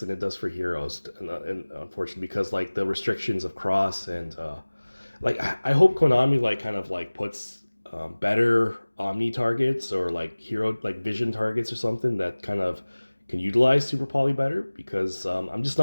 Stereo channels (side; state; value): both; inverted; correlation -1.00